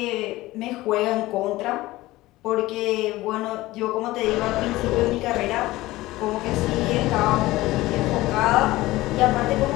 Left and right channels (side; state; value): right; quieter; 18.2 dB